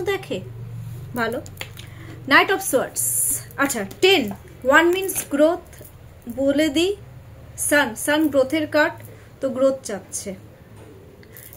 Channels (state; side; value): identical; both; correlation 1.00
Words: দেখে, ভালো। নাইট অফ সোয়ার্ডস, আচ্ছা 10, 1 মিনস গ্রোথ, বলে দিই সান গ্রোথের কার্ড, তো গ্রোথ চাচ্ছে,